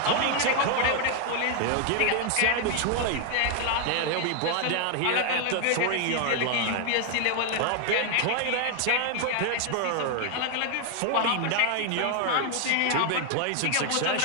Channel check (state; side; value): different; both; correlation 0.00